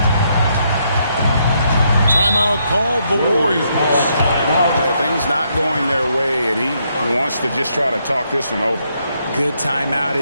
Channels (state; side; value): inverted; both; correlation -0.75